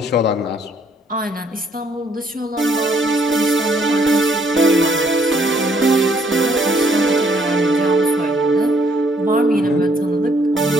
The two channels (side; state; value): both; normal; correlation 0.67